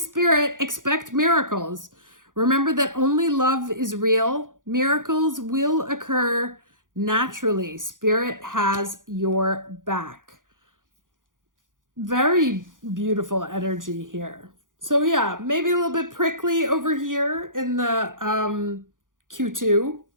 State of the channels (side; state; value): left; late; 0.89 ms